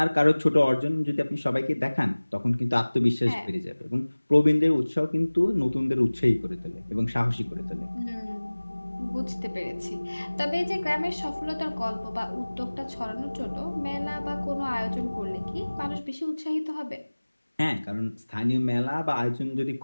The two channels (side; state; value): both; inverted; correlation -1.00